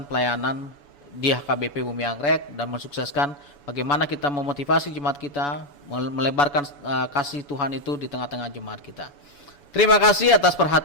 pelayanan di HKBP Bumi Anggrek dan mensukseskan bagaimana kita memotivasi jemaat kita melebarkan kasih Tuhan itu di tengah-tengah jemaat kita. Terima kasih atas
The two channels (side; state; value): right; late; 7.0 ms